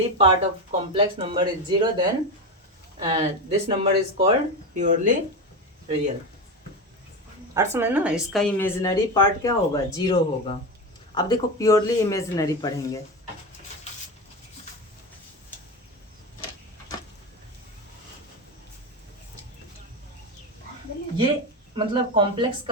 part of complex number is 0, then this number is called purely real। अर्थ समझ ना, इसका इमेजिनरी पार्ट क्या होगा, 0 होगा। अब देखो प्योरली इमेजिनरी पढ़ेंगे, ये मतलब कॉम्प्लेक्स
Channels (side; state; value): both; normal; correlation 0.18